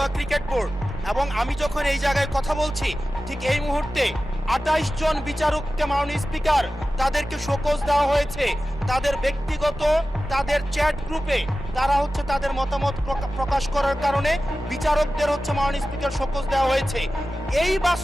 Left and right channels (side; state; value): both; normal; correlation 0.95